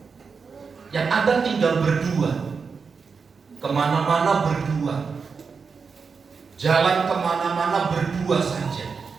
Yang ada tinggal berdua, kemana-mana berdua, jalan kemana-mana berdua saja.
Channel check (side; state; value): left; quieter; 5.3 dB